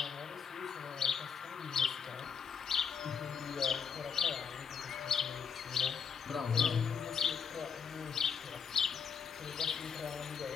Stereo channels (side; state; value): right; quieter; 6.8 dB